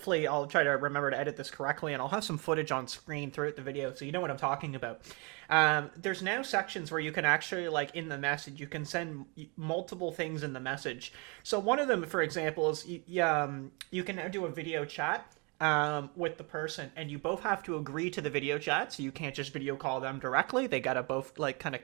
I'll try to remember to edit this correctly, and I'll have some footage on screen throughout the video so you know what I'm talking about. There's now sections where you can actually, like, in the message, you can send multiple things in the message. So one of them, for example, is you can now do a video chat with the person, and you both have to agree to the video chat, so you can't just video call them directly. They gotta both, like, kind of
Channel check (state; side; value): quieter; left; 31.4 dB